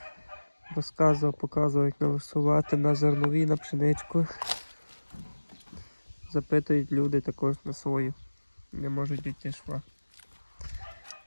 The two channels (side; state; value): both; inverted; correlation -1.00